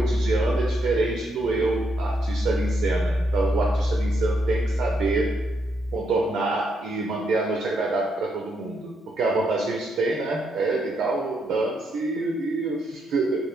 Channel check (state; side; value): normal; both; correlation 0.78